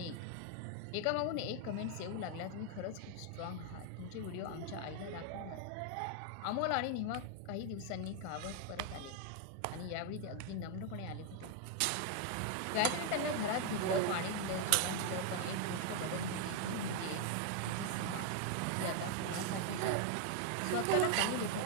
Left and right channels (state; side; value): different; both; correlation 0.00